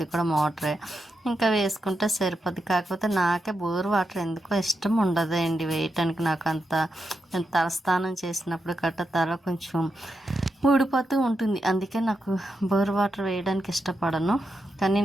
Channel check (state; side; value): normal; both; correlation 0.86